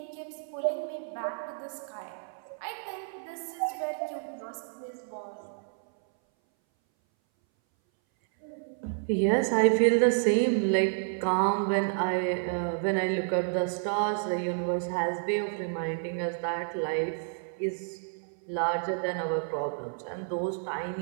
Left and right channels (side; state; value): left; silent; 58 dB below the other